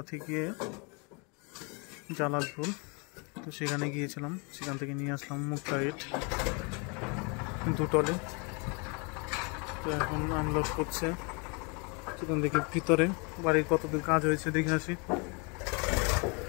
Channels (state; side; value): quieter; right; 32.4 dB